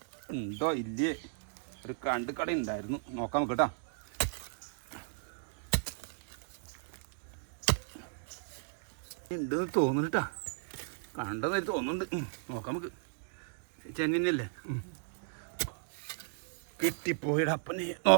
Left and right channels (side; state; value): left; silent; digital silence